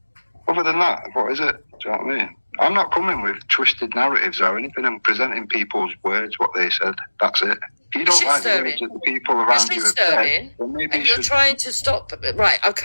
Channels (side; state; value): both; inverted; correlation -1.00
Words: Other than that, what is it? Do you know what I mean? I'm not coming with twisted narratives or anything. I'm presenting people's words, what they said. That's it. If you don't like the words that the people around you have said, then maybe and you're trying to stop. Right,